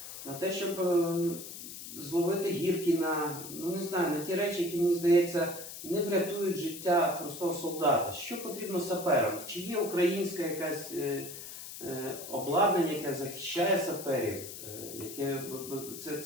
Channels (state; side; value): noise; left; hiss, 11 dB below the sound